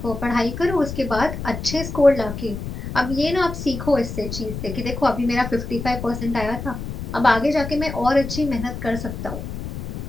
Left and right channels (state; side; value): noise; left; rumble, 7 dB below the sound